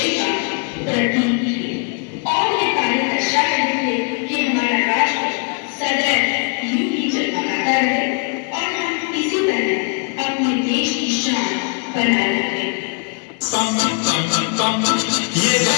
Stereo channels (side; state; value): right; quieter; 38.1 dB